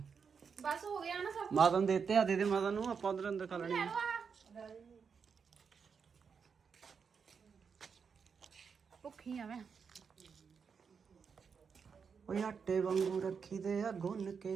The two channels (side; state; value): left; quieter; 6.1 dB